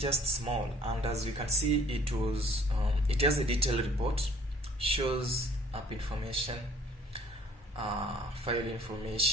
small, and as you can see, it has a detailed report, shows app information, file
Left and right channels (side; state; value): both; normal; correlation 0.56